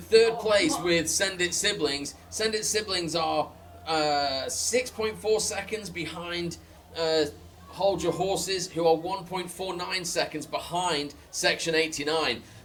place with Send It Siblings. Send It Siblings are 6.4 seconds behind Hold Your Horses, who are 1.49 seconds behind Section 89.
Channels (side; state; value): both; identical; correlation 1.00